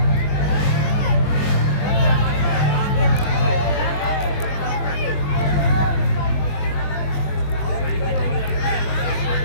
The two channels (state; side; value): late; right; 21 ms